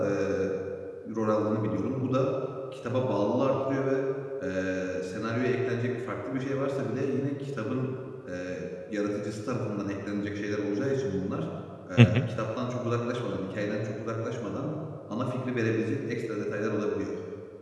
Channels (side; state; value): both; identical; correlation 1.00